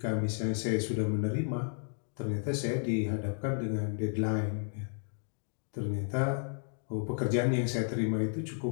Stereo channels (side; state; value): right; silent; 56 dB below the other